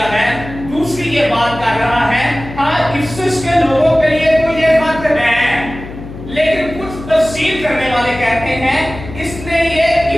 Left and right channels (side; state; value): left; noise; hum, 13 dB below the sound